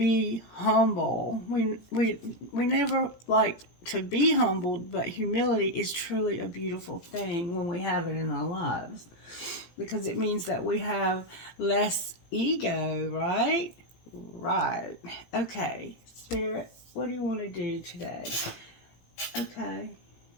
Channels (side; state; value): right; late; 18 ms